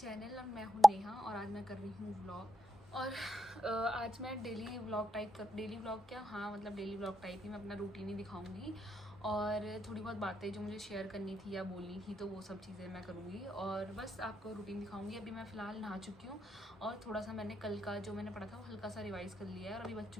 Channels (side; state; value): both; normal; correlation 0.84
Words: और मैं हूँ नेहा और आज मैं कर रही हूँ व्लॉग। और आज मैं डेली व्लॉग टाइप ही मैं अपना रूटीन ही दिखाऊंगी और थोड़ी बहुत बातें जो मुझे शेयर करनी थी या बोलनी थी तो वो सब चीज़ें मैं करूँगी और बस आपको रूटीन दिखाऊंगी। अभी मैं फ़िलहाल नहा चुकी हूँ और थोड़ा सा मैंने कल का जो मैंने पढ़ा था वो हल्का सा रिवाइज़ कर लिया है और अभी बज